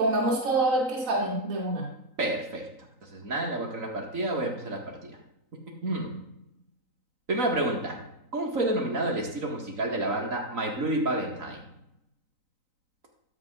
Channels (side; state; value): left; late; 3.9 ms